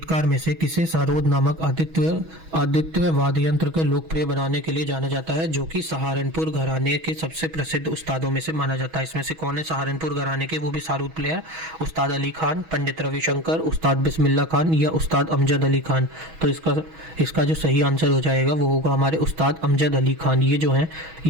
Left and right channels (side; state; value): left; late; 6.2 ms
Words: में से किसे सारोद नामक आदित्य वाद्य यंत्र को लोकप्रिय बनाने के लिए जाना जाता है, जो कि सहारनपुर घराने के सबसे प्रसिद्ध उस्तादों में से माना जाता है? इसमें से कौन है सहारनपुर घराने के, वो भी सारूद प्लेयर? उस्ताद अली खान, पंडित रविशंकर, उस्ताद बिस्मिल्लाह खान, या उस्ताद अमजद अली खान? तो इसका जो सही आंसर हो जाएगा वो होगा हमारे उस्ताद अमजद अली खान। ये जो हैं